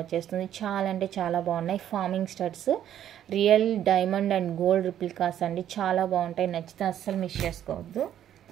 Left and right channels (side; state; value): left; quieter; 10.8 dB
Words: వచ్చేస్తుంది. చాలా అంటే చాలా బాగున్నాయి. Farming studs real diamond and gold replicas అండి. చాలా బాగుంటాయి. నచ్చితే అస్సలు మిస్ చేసుకోవద్దు.